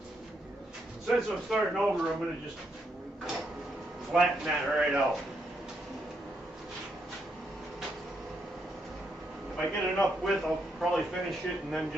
Since I'm starting over, I'm going to just flatten that right out. If I get enough width, I'll probably finish it and then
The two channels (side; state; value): both; normal; correlation 0.79